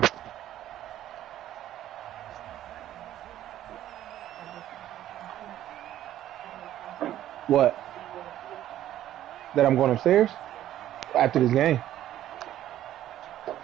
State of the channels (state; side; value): quieter; left; 12.6 dB